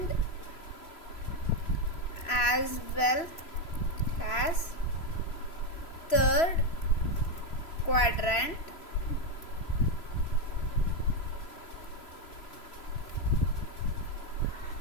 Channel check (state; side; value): late; right; 3.0 ms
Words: as well as third quadrant